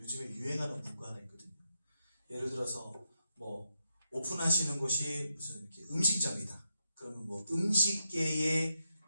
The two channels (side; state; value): both; inverted; correlation -0.83